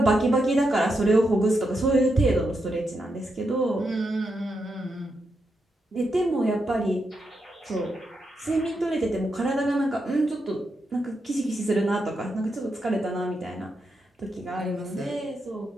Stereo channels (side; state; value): both; normal; correlation 0.84